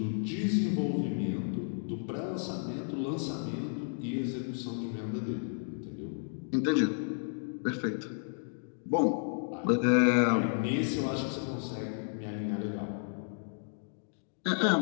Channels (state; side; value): silent; right; digital silence